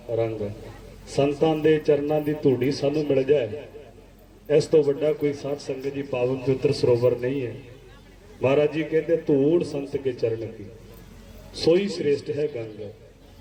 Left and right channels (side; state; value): both; identical; correlation 1.00